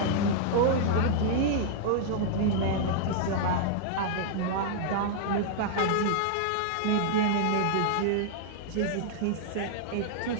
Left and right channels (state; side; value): different; both; correlation -0.01